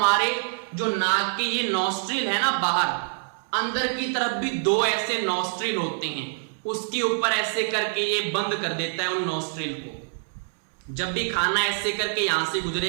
जो नाक के ये नॉस्ट्रिल है ना, बाहर अंदर की तरफ भी दो ऐसे नॉस्ट्रिल होते हैं, उसके ऊपर ऐसे करके ये बंद कर देता है उन नॉस्ट्रिल को। जब भी खाना ऐसे करके यहां से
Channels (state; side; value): silent; left; 61 dB below the other